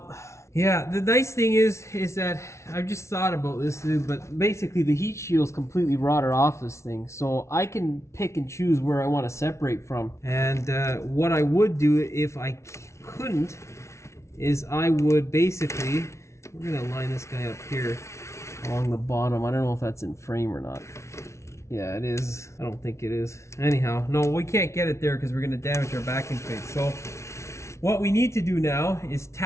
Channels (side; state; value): right; late; 0.13 ms